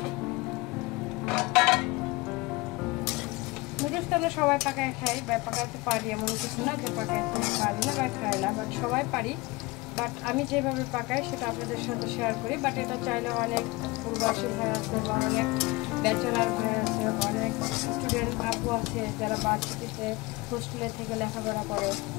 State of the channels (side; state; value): right; quieter; 23.2 dB